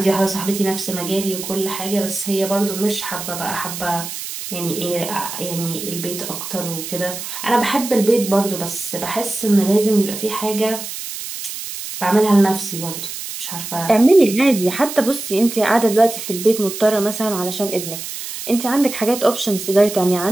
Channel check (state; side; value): noise; right; hiss, 8 dB below the sound